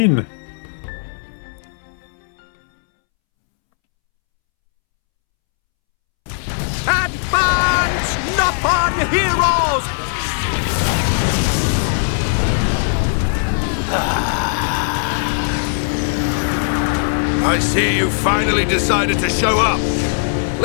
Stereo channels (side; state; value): right; silent; 67 dB below the other